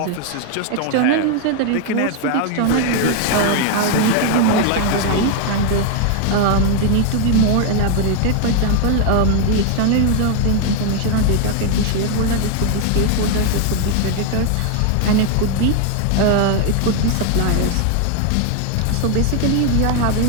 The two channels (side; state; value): both; different; correlation 0.00